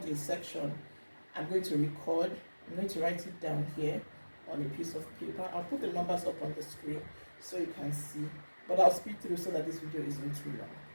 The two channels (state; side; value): inverted; both; correlation -1.00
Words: a section, I'm going to record. I'm going to write it down here on a piece of paper. I'll put the numbers up on the screen so you can see. But I'll speed through so that this video isn't too long.